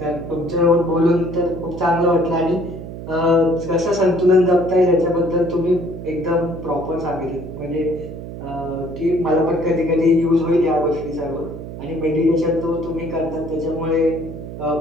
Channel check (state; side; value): noise; right; hum, 10 dB below the sound